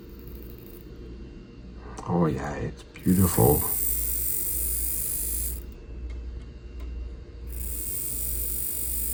Oh yeah, it's beautiful.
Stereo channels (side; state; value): both; identical; correlation 1.00